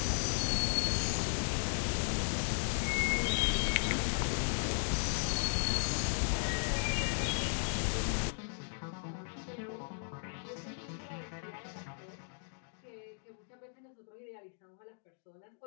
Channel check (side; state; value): right; silent; digital silence